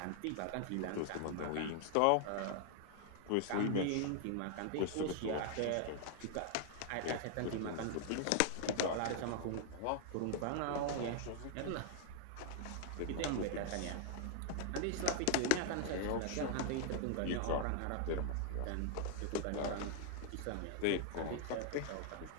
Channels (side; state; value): both; different; correlation 0.00